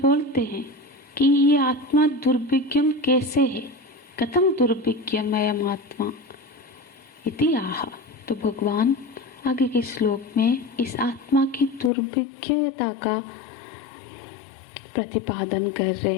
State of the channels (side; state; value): right; drops out; at 11.9 s